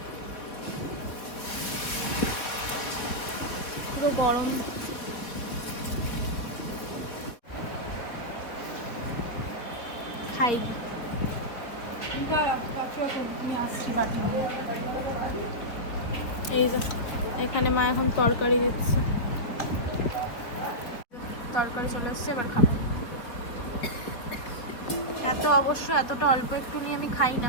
পুরো গরম। খাই এই যে এখানে মা এখন তরকারি দিচ্ছে, তরকারি চলে এসছে, এবার খাবো। এতটা অল্প একটু নিয়ে আমি খাই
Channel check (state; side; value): late; right; 4.0 ms